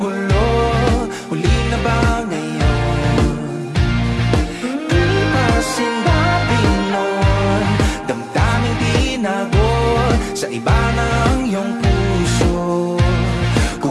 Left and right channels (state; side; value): identical; both; correlation 1.00